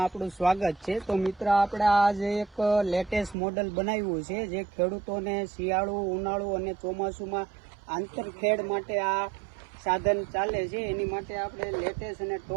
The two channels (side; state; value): left; drops out; at 3.4 s